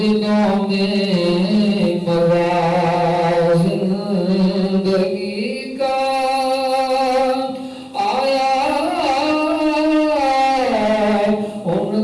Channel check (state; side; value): identical; both; correlation 1.00